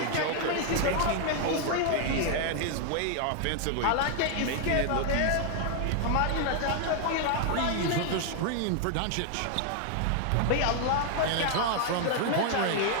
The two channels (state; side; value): different; both; correlation 0.00